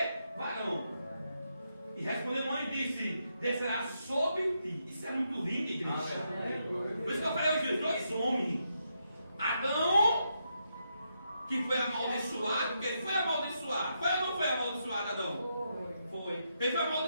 Varão. E respondeu o anjo e disse: descerá sobre ti. Isso é muito lindo, igreja. Por isso que eu falei hoje, os dois homens. Adão, que foi amaldiçoado, porque ele foi amaldiçoado. Foi ou não foi amaldiçoado, Adão? Foi. Ele foi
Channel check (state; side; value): inverted; both; correlation -0.81